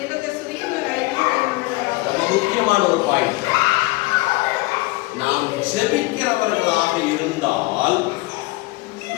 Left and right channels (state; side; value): quieter; right; 21.8 dB